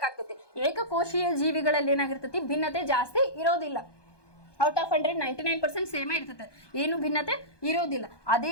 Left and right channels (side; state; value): right; late; 1.2 ms